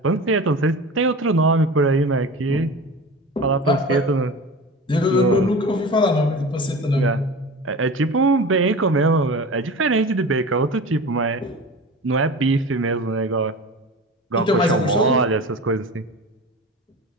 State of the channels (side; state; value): both; normal; correlation 0.33